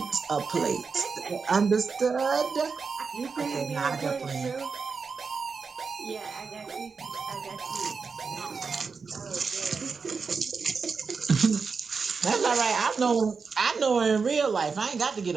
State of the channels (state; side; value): quieter; left; 5.1 dB